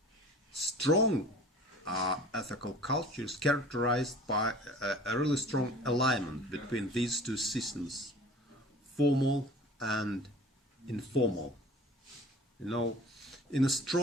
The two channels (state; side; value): normal; both; correlation 0.44